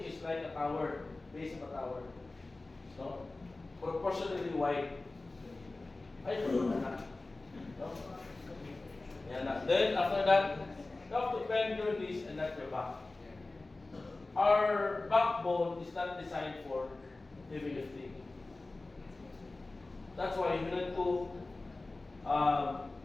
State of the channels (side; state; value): right; quieter; 3.2 dB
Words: is like a tower, base of a tower. So, proportionally wide. Ay, na. No? Yan na. Then, after that, you have to bend your knees and not your back. Our backbone is not designed for heavy lifting. That's why you need to